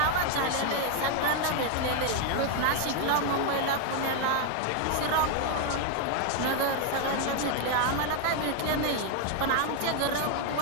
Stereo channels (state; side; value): different; both; correlation 0.01